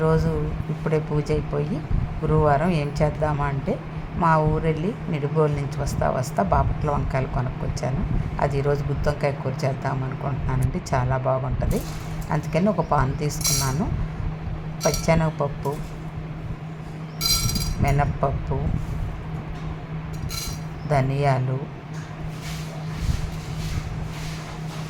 ఇప్పుడే పూజ అయిపోయి గురువారం ఏం చేద్దామా అంటే మా ఊరెళ్ళి నిడుబోలు నుంచి వస్తా బాపట్ల వంకాయలు కొనుక్కొచ్చాను. అది ఈరోజు గుత్తి వంకాయ కూర చేద్దాం అనుకుంటున్నానండి. చాలా బాగుంటుంది. అందుకని ఒక పాన్ తీసుకున్నాను. పచ్చెనగపప్పు, మినప్పప్పు, ధనియాలు,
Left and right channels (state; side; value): identical; both; correlation 1.00